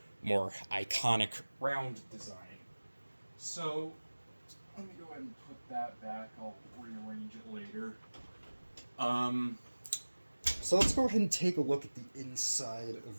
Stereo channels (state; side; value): inverted; both; correlation -1.00